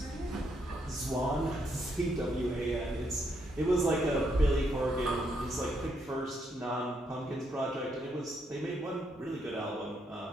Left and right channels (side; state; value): both; normal; correlation 0.76